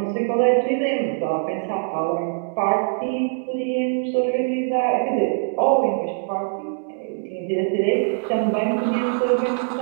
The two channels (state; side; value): silent; left; digital silence